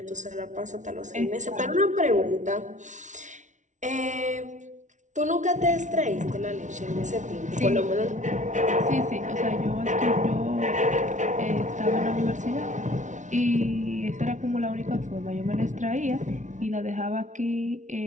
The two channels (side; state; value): left; late; 0.36 ms